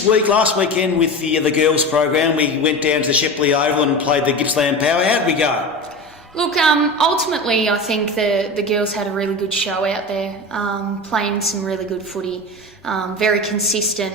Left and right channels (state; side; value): normal; both; correlation 0.28